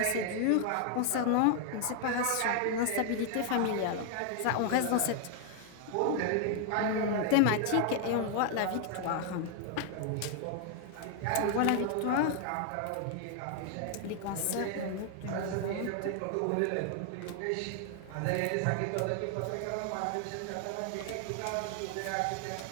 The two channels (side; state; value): both; different; correlation 0.00